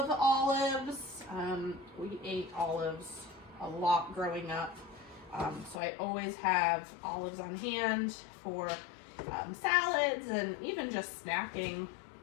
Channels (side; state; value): right; drops out; at 5.8 s